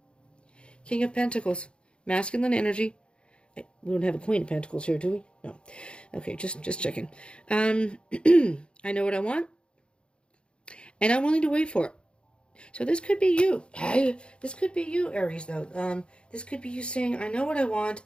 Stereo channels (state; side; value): late; right; 0.055 ms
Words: King of Pentacles, masculine energy. We don't have a Queen of Pentacles here, do we? No. Okay, just checking. I know what I want, and I'm willing to wait for it. So this could be you. This could be you, Aries, though. This could be you saying, I know what I want,